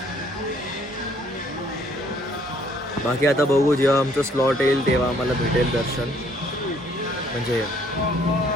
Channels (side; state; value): both; normal; correlation 0.63